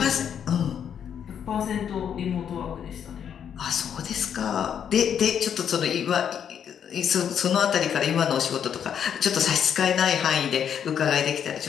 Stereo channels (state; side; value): quieter; right; 8.4 dB